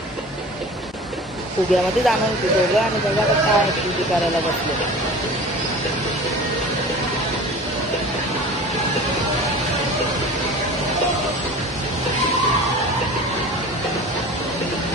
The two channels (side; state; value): both; normal; correlation 0.38